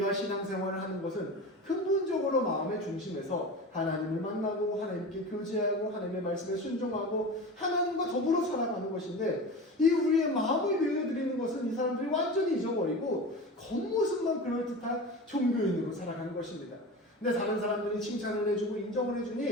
신앙생활을 하는 것은 근본적으로 마음의 중심에서 하나님을 만나고 하나님께 교제하고 하나님의 말씀에 순종하고 하나님과 더불어 살아가는 것인데 이 우리의 마음을 내어드리는 것은 이 사람들이 완전히 잊어버리고 겉모습만 그럴듯한 종교인으로 살아가는 것입니다. 근데 다른 사람들이 칭찬을 해주고 인정을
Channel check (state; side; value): normal; both; correlation 0.30